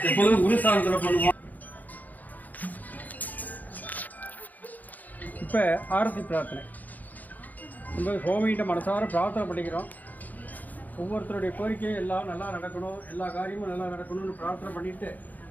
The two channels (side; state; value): right; late; 0.081 ms